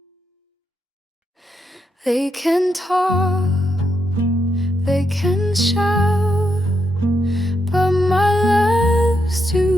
They can talk, they can shout, but my love's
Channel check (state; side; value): normal; both; correlation 0.81